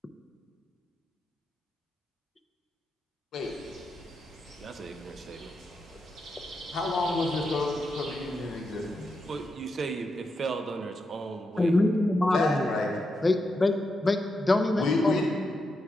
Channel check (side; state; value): both; normal; correlation 0.85